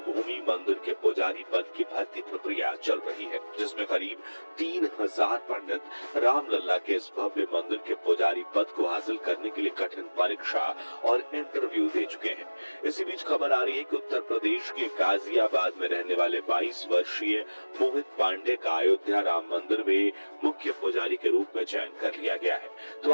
मंदिर के पुजारी पद की भर्ती प्रक्रिया चल रही है, जिसमें करीब 3000 पंडित रामलला के इस भव्य मंदिर के पुजारी पद को हासिल करने के लिए कठिन परीक्षा और इंटरव्यू दे चुके हैं। इसी बीच खबर आ रही है कि उत्तर प्रदेश के गाजियाबाद में रहने वाले 22 वर्षीय मोहित पांडे का अयोध्या राम मंदिर में मुख्य पुजारी के रूप में चयन कर लिया गया है। तो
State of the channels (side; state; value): both; inverted; correlation -1.00